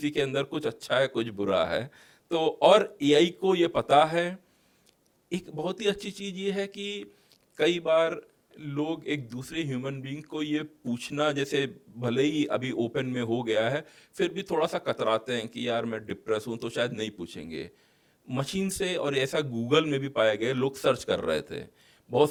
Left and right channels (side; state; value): both; identical; correlation 1.00